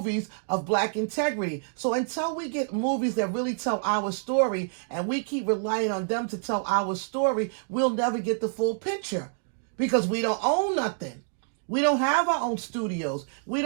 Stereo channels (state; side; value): silent; left; digital silence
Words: of black integrity. So until we get movies that really tell our story, and we keep relying on them to tell our story, we'll never get the full picture, because we don't own nothing. We don't have our own studios. We